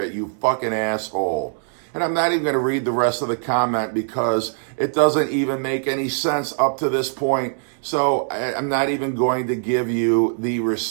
you fucking asshole. And I'm not even going to read the rest of the comment because it doesn't even make any sense up to this point. So I'm not even going to give you the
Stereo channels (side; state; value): left; silent; 64 dB below the other